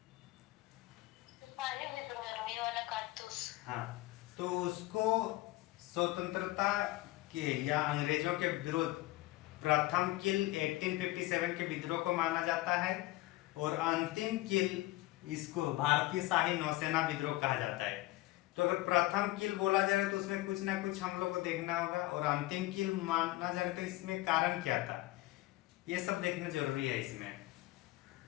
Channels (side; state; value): right; quieter; 18.5 dB